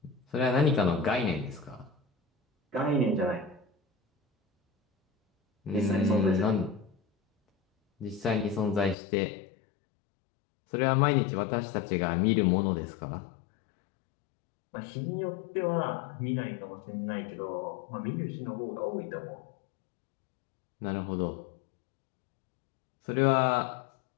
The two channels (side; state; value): right; drops out; at 9.0 s